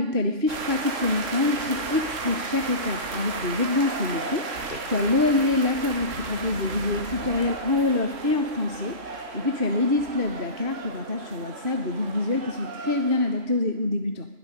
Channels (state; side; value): late; left; 3.0 ms